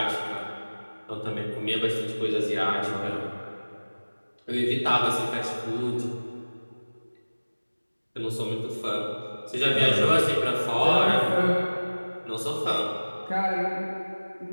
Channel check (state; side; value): inverted; both; correlation -1.00